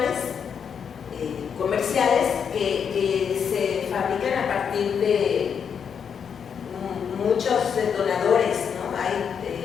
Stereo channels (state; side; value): quieter; right; 7.2 dB